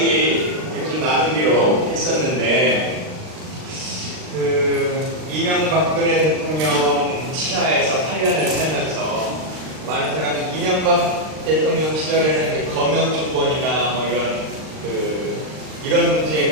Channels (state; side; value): late; left; 39 ms